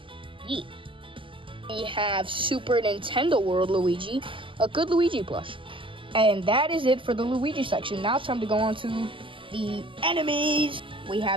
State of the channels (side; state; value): left; late; 0.25 ms